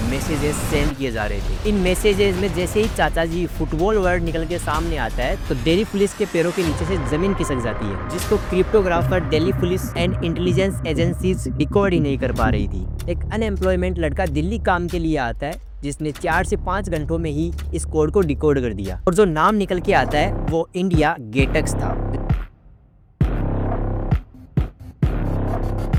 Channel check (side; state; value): both; identical; correlation 1.00